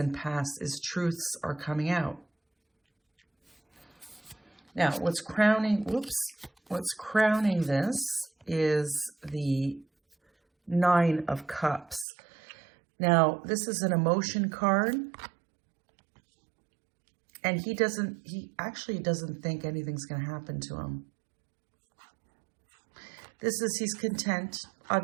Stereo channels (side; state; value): left; drops out; at 12.1 s